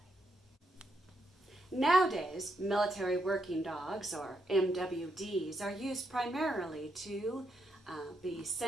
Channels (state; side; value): normal; both; correlation 0.79